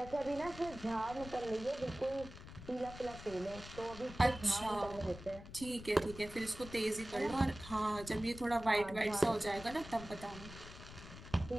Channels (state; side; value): noise; left; rumble, 14 dB below the sound